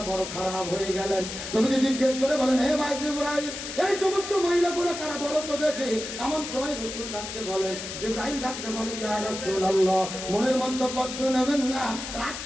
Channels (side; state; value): left; noise; hiss, 8 dB below the sound